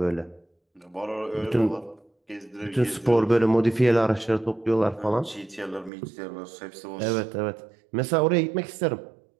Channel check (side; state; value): left; drops out; at 5.9 s